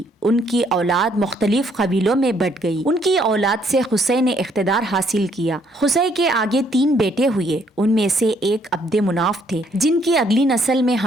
ان کی اولاد مختلف قبیلوں میں بٹ گئی۔ ان کی اولاد سے قصی نے اقتدار حاصل کیا۔ قصی کے آگے 3 بیٹے ہوئے، ان میں سے ایک عبد مناف تھے، جن کی اگلی نسل میں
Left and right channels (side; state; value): both; normal; correlation 0.68